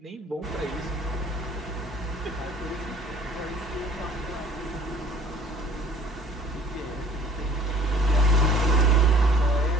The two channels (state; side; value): normal; both; correlation 0.53